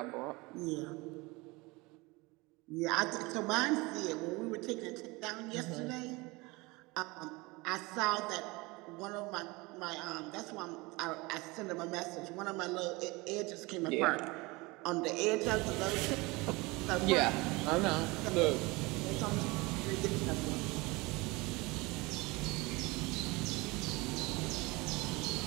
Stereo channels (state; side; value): quieter; left; 24.0 dB